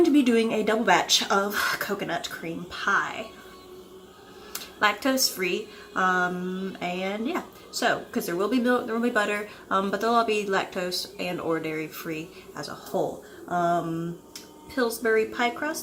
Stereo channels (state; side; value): identical; both; correlation 1.00